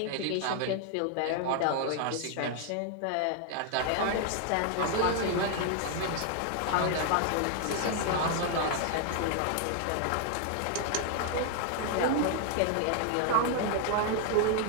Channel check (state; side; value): different; both; correlation 0.00